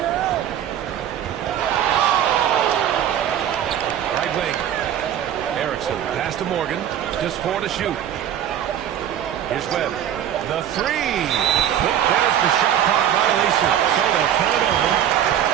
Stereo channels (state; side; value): quieter; left; 10.3 dB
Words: Right wing. Erickson. Pass to Morgan. Just 4 to shoot. Here's Webb. The three. There's the shot clock violation. So they'll turn it over.